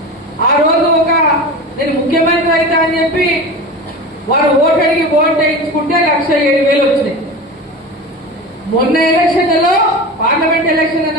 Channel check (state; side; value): normal; both; correlation 0.30